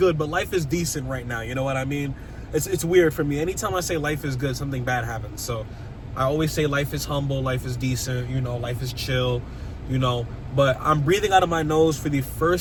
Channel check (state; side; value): identical; both; correlation 1.00